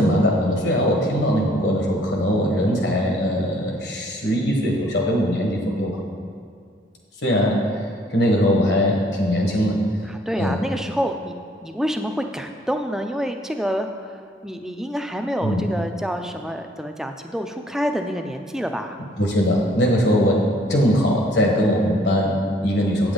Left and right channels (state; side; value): normal; both; correlation 0.61